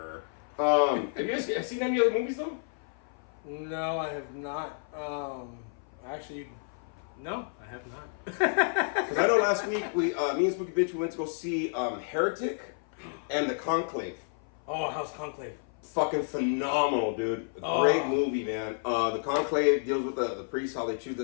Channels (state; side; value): silent; right; 55 dB below the other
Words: Have you guys seen any other movies, though? No, I have not. Actually, no, I have not. Because I know last week, me and Spooky Bitch, we went to go see Heretic and The Conclave. Oh, how's Conclave? Fucking phenomenal, dude. Great movie, man. The Conclave deals with the priests, how they choose the